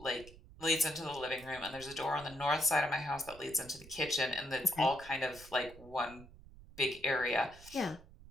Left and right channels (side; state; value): right; noise; rumble, 20 dB below the sound